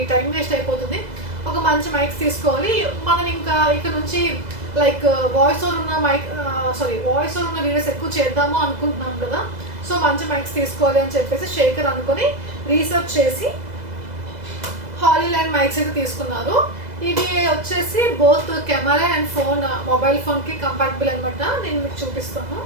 టైం వేస్ట్ అయిపోతుంది, ఒక మంచి మైక్స్ తీసుకోవాలి మనం. ఇంకా ఇక్కడ నుంచి లైక్ వాయిస్ ఓవర్ ఉన్న వాయిస్ ఓవర్ ఉన్న వీడియోస్ ఎక్కువ చేద్దాము అనుకుంటున్నాం కదా, సో మంచి మైక్స్ తీసుకోవాలి అని చెప్పేసి శేఖర్ అనుకొని రీసెర్చ్ చేసి హాలీలాండ్ మైక్స్ అయితే తీసుకున్నారు. ఇవి వచ్చేసి both camera and phone, mobile ఫోన్కి కంపాటబుల్ అనమాట. నేను మీకు చూపిస్తాను.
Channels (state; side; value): late; left; 2.0 ms